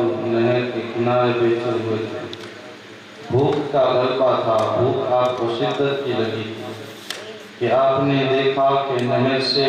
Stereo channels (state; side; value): identical; both; correlation 1.00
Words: نہر کے کنارے بیٹھے ہوئے تھے، بھوک کا غلبہ تھا، بھوک آپ کو شدت کی لگی تھی کہ آپ نے دیکھا کہ نہر سے